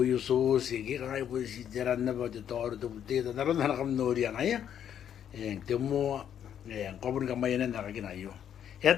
sos. Iya kirang po si tiran na ba? Toru tu puti. Naroon na nakam nori ang aya. Yang temu. Yang kopun kamayan na nakakinayo.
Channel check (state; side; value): quieter; right; 9.4 dB